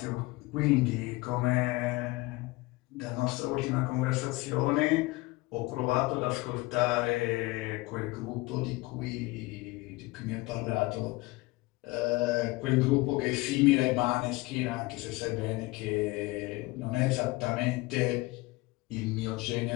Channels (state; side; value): quieter; right; 22.1 dB